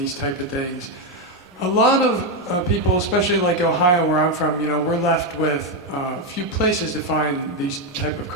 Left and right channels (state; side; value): normal; both; correlation 0.05